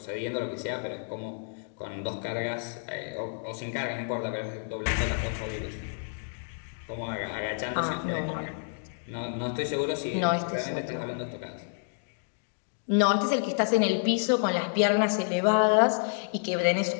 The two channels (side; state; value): right; silent; digital silence